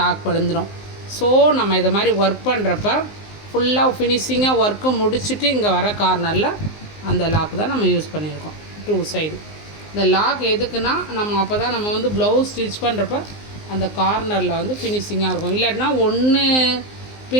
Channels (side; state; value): right; late; 19 ms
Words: விழுந்துடும். ஸோ நம்ம இதை மாதிரி ஒர்க் பண்ணுறப்ப ஃபுல்லாக ஃபினிஷிங்காக ஒர்க்கு முடிச்சுட்டு இங்கே வர கார்னரில் அந்த லாக் தான் நம்ம யூஸ் பண்ணியிருக்கோம். 2 சைடு இந்த லாக் எதுக்குன்னா நம்ம அப்போ தான் நம்ம வந்து ப்ளவுஸ் ஸ்டிச் பண்ணுறப்ப அந்த கார்னரில் வந்து ஃபினிஷிங்காக இருக்கும். இல்லாட்டினா ஒன்று